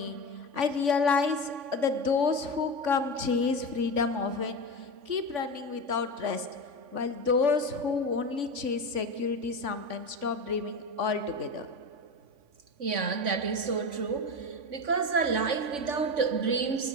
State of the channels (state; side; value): late; left; 3.5 ms